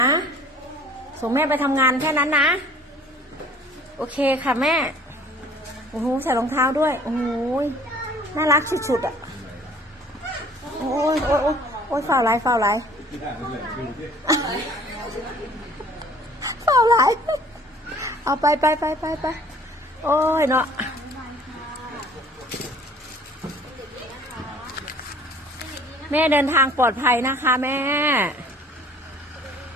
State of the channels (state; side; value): normal; both; correlation 0.52